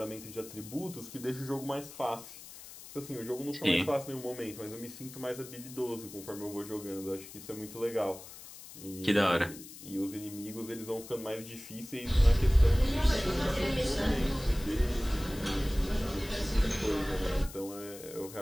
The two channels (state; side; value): noise; left; hiss, 15 dB below the sound